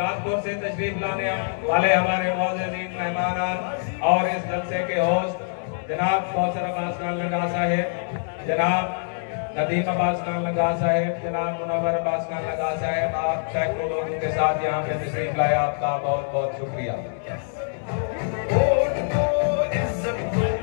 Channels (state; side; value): silent; right; digital silence